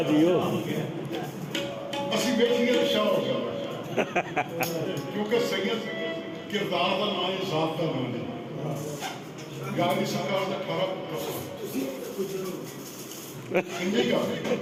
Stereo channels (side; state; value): both; identical; correlation 1.00